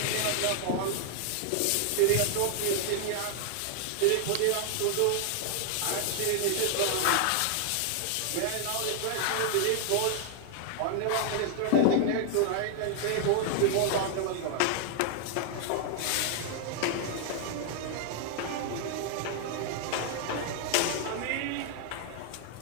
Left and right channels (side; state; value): both; different; correlation 0.00